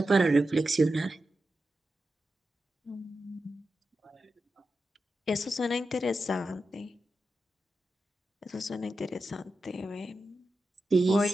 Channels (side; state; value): both; normal; correlation 0.90